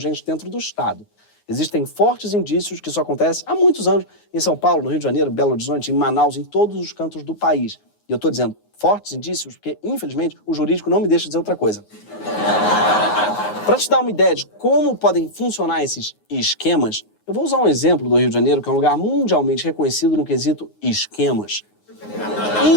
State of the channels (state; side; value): late; right; 9.5 ms